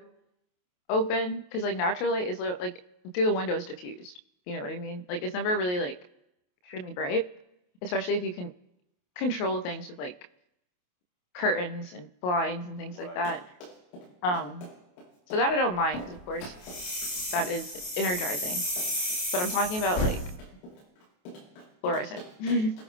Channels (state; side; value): late; right; 28 ms